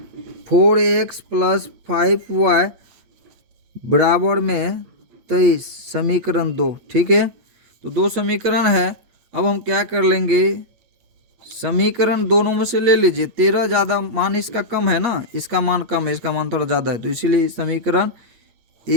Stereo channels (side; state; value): left; late; 8.3 ms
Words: 4x प्लस 5y बराबर में 23 समीकरण 2। ठीक है, तो दो समीकरण है। अब हम क्या कर लेंगे, समीकरण दोनों में से ले लीजिए। 13 ज़्यादा मान इसका कम है ना, इसका मान कम है, इसका मान थोड़ा ज़्यादा है, तो इसीलिए समीकरण